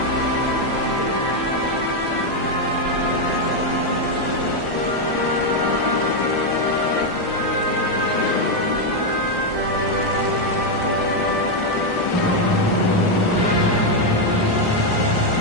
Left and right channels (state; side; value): late; right; 1.4 ms